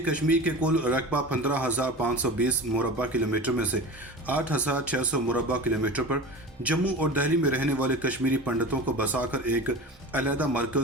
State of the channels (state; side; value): normal; both; correlation 0.32